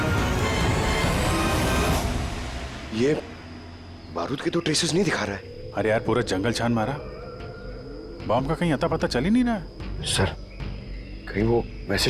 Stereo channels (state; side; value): identical; both; correlation 1.00